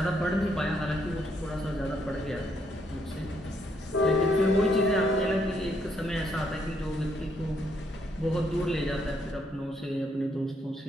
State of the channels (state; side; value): normal; both; correlation 0.73